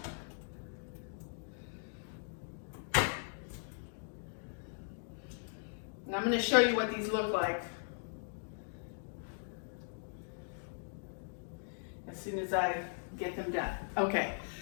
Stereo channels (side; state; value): right; silent; digital silence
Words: I'm gonna show you what these look like as soon as I get them done. Okay,